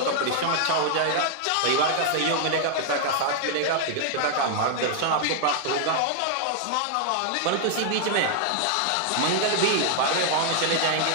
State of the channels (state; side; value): different; both; correlation -0.01